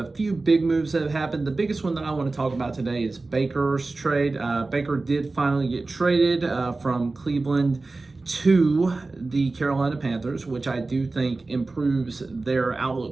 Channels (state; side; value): quieter; left; 3.4 dB